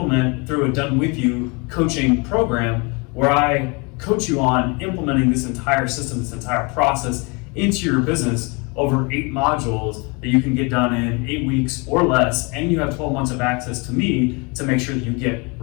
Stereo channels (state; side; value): quieter; right; 30.1 dB